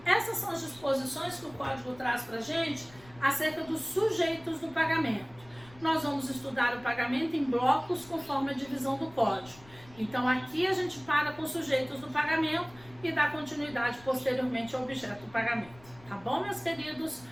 essas são as disposições que o Código traz para a gente acerca dos sujeitos do pagamento. Nós vamos estudar o pagamento em blocos conforme a divisão do Código. Então, aqui a gente para com os sujeitos do pagamento e dá continuidade posteriormente ao objeto do pagamento. Tá bom, meus queridos?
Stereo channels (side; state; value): left; noise; rumble, 23 dB below the sound